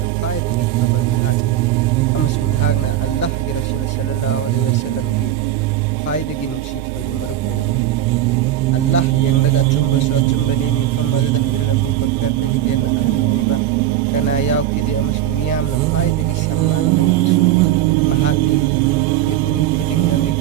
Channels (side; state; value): left; quieter; 12.1 dB